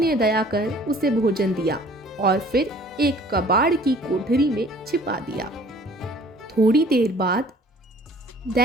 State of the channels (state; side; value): normal; both; correlation 0.52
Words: दया कर उसे भोजन दिया और फिर एक कबाड़ की कोठरी में छिपा दिया। थोड़ी देर बाद